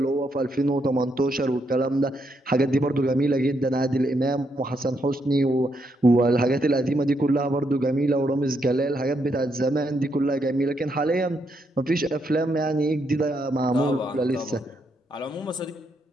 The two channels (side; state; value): both; normal; correlation 0.78